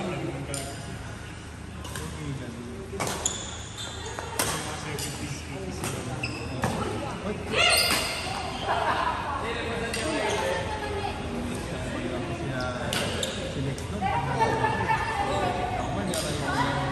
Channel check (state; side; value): identical; both; correlation 1.00